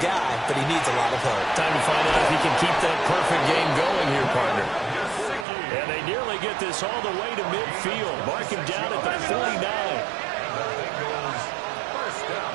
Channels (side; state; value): left; drops out; at 5.5 s